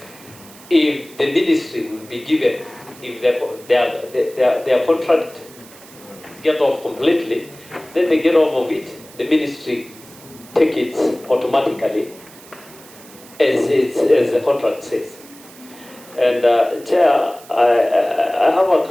if the ministry will be given, if their contract get off completely, then they get off of it. The ministry take it automatically, as the contract says. And Chair, I have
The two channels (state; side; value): noise; right; hiss, 21 dB below the sound